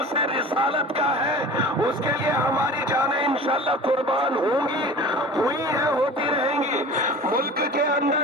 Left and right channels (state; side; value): normal; both; correlation 0.38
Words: رسالت کا ہے، اس کے لیے ہماری جانیں انشاءاللہ قربان ہوں گی، ہوئی ہیں، ہوتی رہیں گی۔ ملک کے